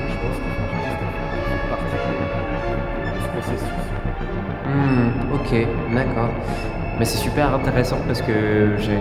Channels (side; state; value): both; identical; correlation 1.00